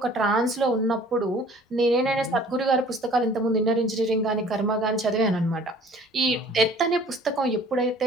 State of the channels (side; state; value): both; normal; correlation 0.51